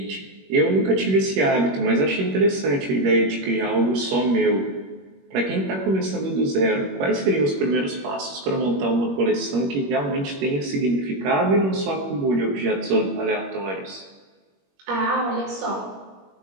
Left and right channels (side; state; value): left; late; 21 ms